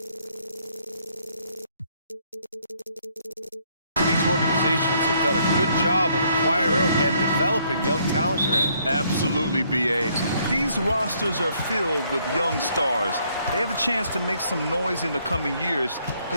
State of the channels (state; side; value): inverted; both; correlation -0.68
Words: These organizations have done a good job of acquiring and developing young talent, Grant. Absolutely, BA. These rosters are filled with young stars. They have a chance to make some noise in the coming years.